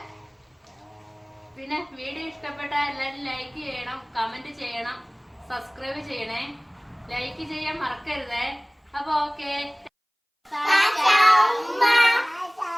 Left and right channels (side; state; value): both; identical; correlation 1.00